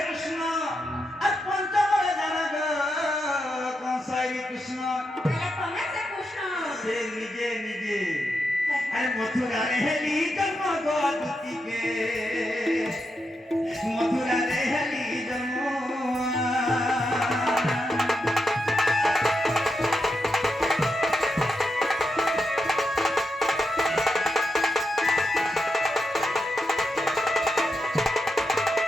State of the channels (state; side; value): normal; both; correlation 0.85